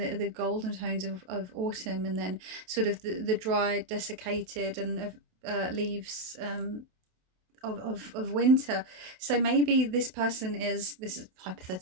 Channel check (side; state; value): left; late; 27 ms